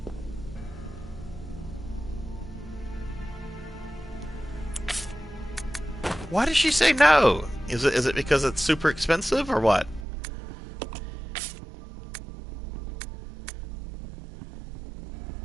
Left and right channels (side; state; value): left; drops out; at 10.1 s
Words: Why did she say no? Is it because it's super expensive or what?